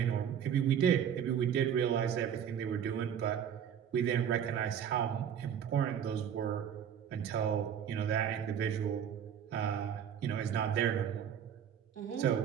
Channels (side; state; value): left; quieter; 8.7 dB